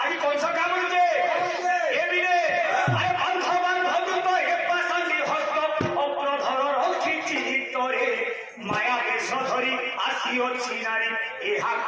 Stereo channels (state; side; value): identical; both; correlation 1.00